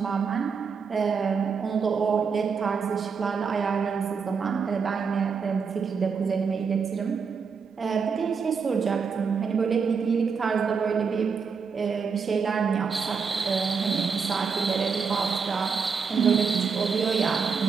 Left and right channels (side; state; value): left; quieter; 5.7 dB